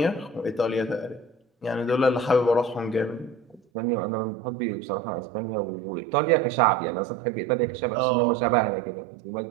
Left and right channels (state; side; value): drops out; left; at 3.6 s